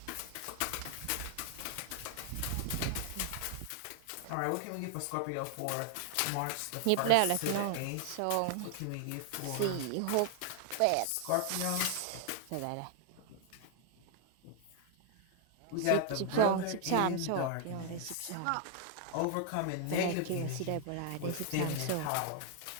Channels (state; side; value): different; both; correlation 0.00